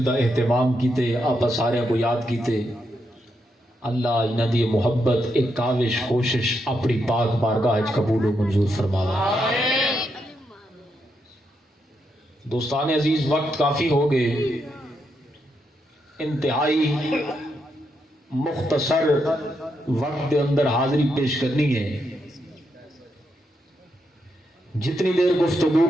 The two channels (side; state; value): both; normal; correlation 0.81